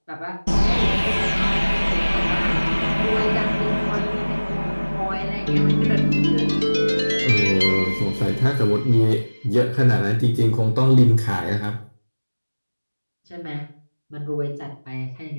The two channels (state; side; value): inverted; both; correlation -1.00